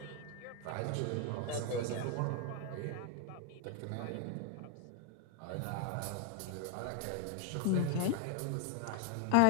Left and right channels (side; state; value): both; different; correlation 0.01